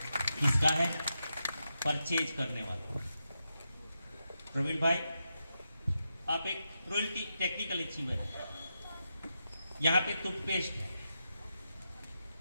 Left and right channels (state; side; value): inverted; both; correlation -0.87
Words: किसका है? परचेज करने वाला। प्रवीण भाई, आप एक रॉयल्टी टेक्निकल अचीवर है। यहां पे टूथपेस्ट है,